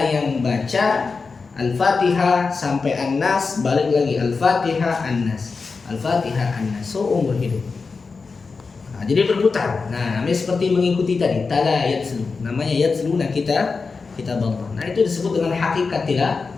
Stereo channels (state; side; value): quieter; right; 4.6 dB